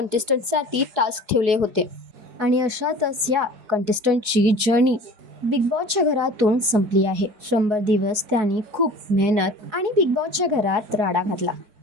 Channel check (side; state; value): left; late; 4.7 ms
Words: टास्क ठेवले होते आणि अशातच या कंटेस्टंटची जर्नी बिग बॉसच्या घरातून संपली आहे. 100 दिवस त्यांनी खूप मेहनत आणि बिग बॉसच्या घरात राडा घातला.